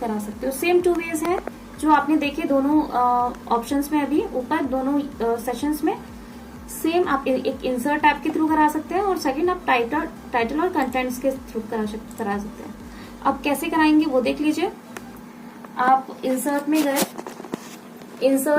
करा सकते हो। सेम टू वेज है जो आपने देखे दोनों ऑप्शंस में, अभी ऊपर दोनों सेशंस में। सेम आप एक इंसर्ट टैब के थ्रू करा सकते हैं और सेकंड आप टाइटल और कंटेंट्स के थ्रू करा सकते हैं। अब कैसे कराएंगे वो देख लीजिए। आप इंसर्ट में गए,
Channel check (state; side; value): identical; both; correlation 1.00